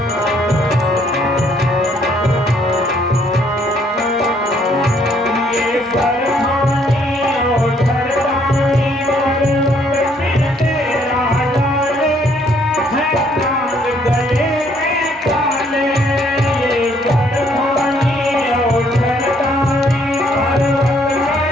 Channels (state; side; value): normal; both; correlation 0.66